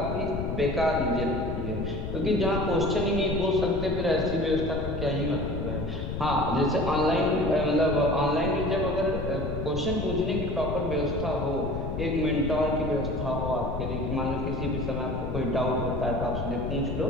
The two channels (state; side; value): noise; left; rumble, 4 dB below the sound